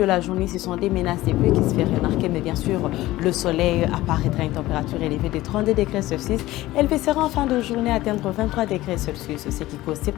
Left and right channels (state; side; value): quieter; right; 17.0 dB